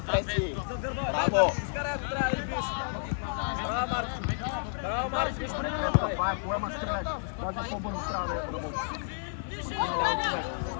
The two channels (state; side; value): silent; right; digital silence